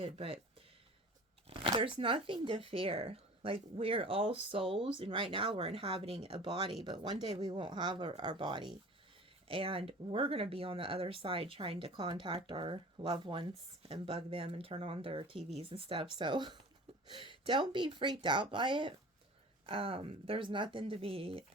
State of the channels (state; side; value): normal; both; correlation 0.41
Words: But there's nothing to fear. Like, we're all souls, and right now we're inhabiting a body, but one day we won't have our body. And we're going to be on the other side trying to contact our loved ones and bug them and turn on their TVs and stuff. So don't be freaked out by it. There's nothing to be